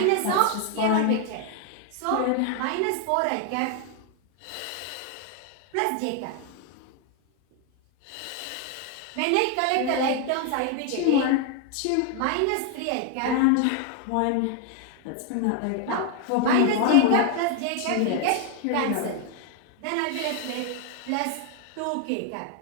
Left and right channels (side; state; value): both; different; correlation 0.00